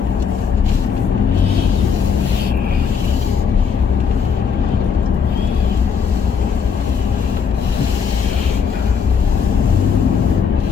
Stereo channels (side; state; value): right; quieter; 6.4 dB